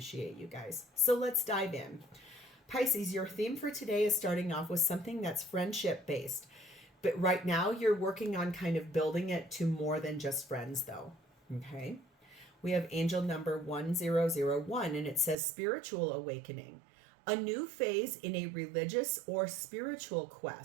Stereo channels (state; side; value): drops out; left; at 15.4 s